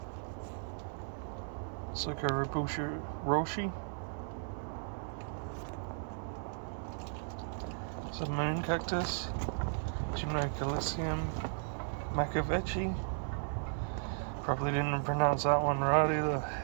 Socoribusha Roshi. It's a moon cactus. Gymnocalicium Macavechi. Probably didn't pronounce that one right either.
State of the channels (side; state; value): left; silent; digital silence